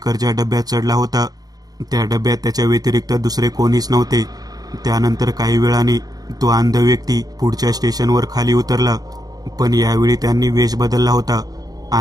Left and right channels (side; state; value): left; late; 0.19 ms